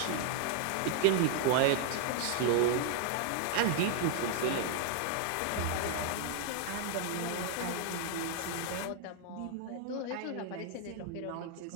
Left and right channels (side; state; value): both; different; correlation 0.00